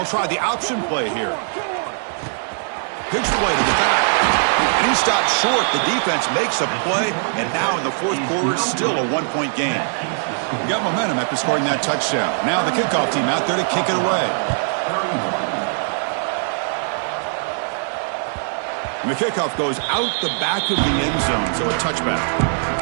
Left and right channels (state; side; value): silent; left; digital silence